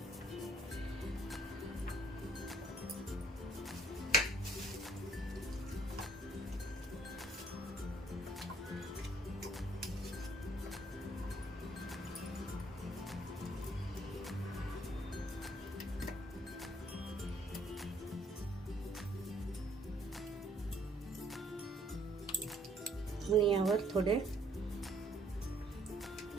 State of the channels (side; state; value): both; normal; correlation 0.62